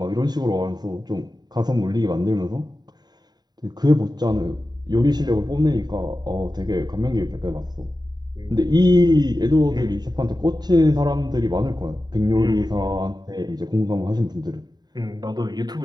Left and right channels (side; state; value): left; late; 0.20 ms